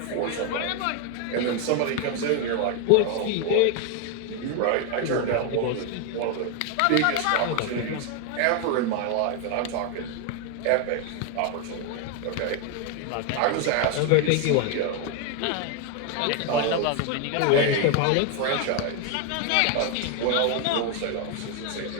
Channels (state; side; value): different; both; correlation 0.01